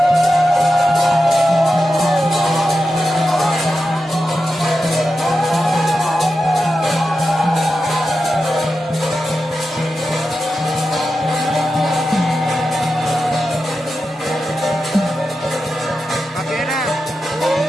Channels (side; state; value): both; normal; correlation 0.90